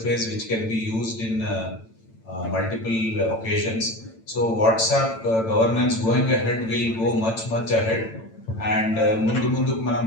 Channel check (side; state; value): right; late; 8.9 ms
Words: which can be used in multiple occasions. So WhatsApp governance going ahead will go much ahead. And ముందుకు మనం